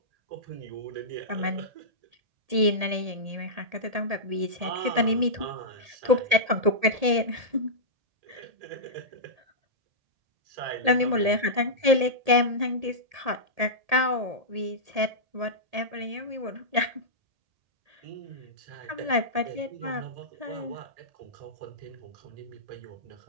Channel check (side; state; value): left; late; 1.8 ms